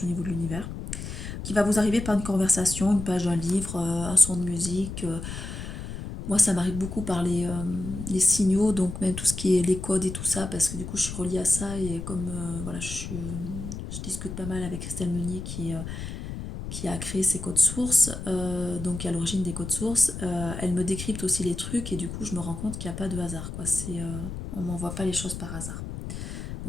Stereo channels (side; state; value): left; noise; rumble, 8 dB below the sound